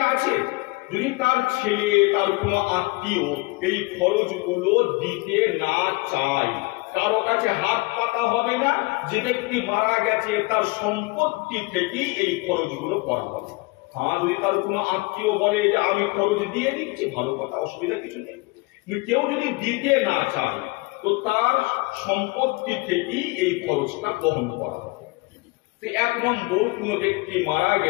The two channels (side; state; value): right; quieter; 25.0 dB